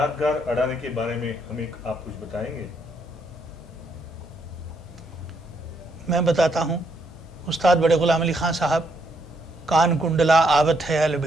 अडाने के बारे में हमें आप कुछ बताएंगे? मैं बताता हूँ। उस्ताद बड़े गुलाम अली खान साहब कान कुंडला आवत है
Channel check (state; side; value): normal; both; correlation 0.74